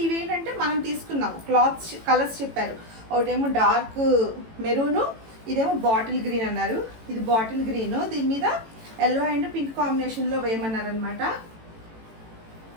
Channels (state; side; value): late; left; 18 ms